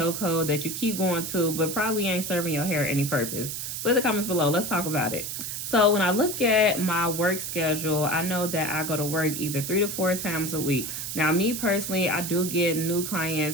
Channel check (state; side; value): noise; right; hiss, 5 dB below the sound